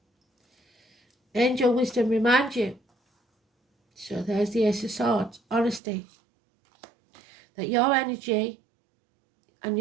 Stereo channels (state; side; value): drops out; left; at 5.8 s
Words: Angel wisdom reminds you. So there's the Ace of Swords. Honesty. That your energy and